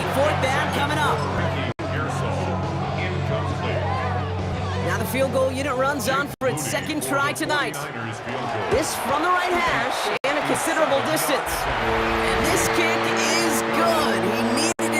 4th down coming up. Now the field goal unit runs on for its 2nd try tonight. This from the right hash and a considerable distance. And this kick is good. He needed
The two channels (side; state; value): both; identical; correlation 1.00